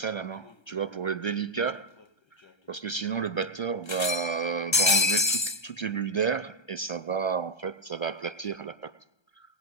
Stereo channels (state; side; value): late; right; 1.3 ms